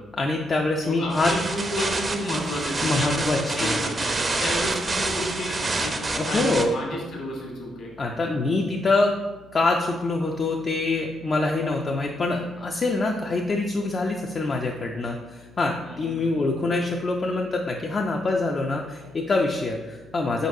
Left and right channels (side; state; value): left; noise; hum, 26 dB below the sound